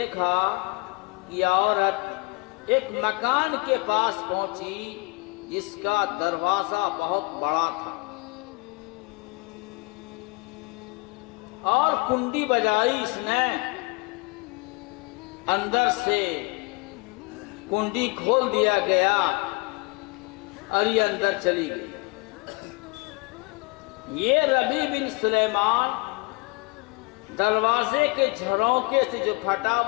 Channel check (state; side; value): quieter; right; 28.3 dB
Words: کہ عورت ایک مکان کے پاس پہنچی جس کا دروازہ بہت بڑا تھا، اور کنڈی بجائی اس نے، اندر سے کنڈی کھول دیا گیا اور یہ اندر چلی گئی۔ یہ ربیع بن سلیمان دروازے کے جھروکے سے جو پھٹا